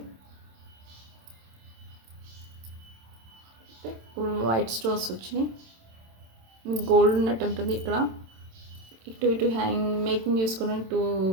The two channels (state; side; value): late; left; 27 ms